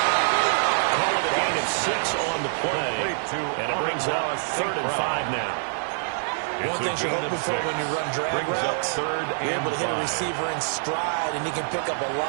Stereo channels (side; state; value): left; silent; 61 dB below the other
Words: Call it a gain of 6 on the play. And it brings up 3rd and 5 now. One thing you're hoping for when you run drag routes, you're able to hit a receiver in stride, and he can pick up a